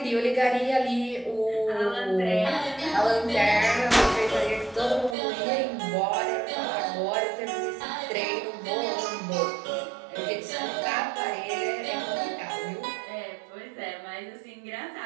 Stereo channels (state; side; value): drops out; left; at 5.2 s